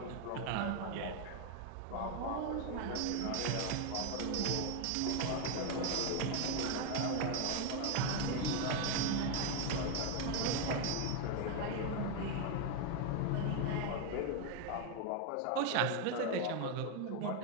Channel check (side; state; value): both; different; correlation 0.01